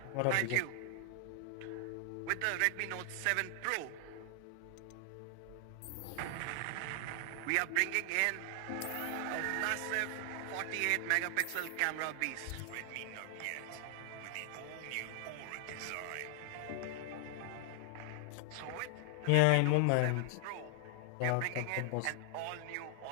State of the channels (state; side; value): different; both; correlation 0.00